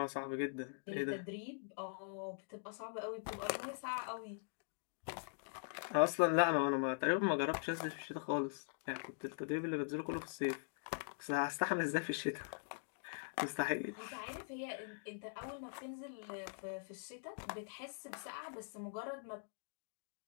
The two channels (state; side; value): silent; right; digital silence